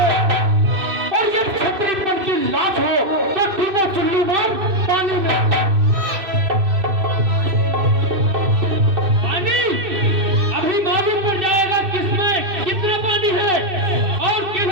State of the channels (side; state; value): left; late; 2.6 ms